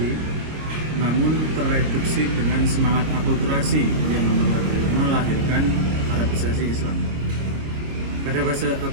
namun terreduksi dengan semangat akulturasi yang melahirkan Arabisasi Islam. Pada fase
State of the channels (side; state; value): left; late; 26 ms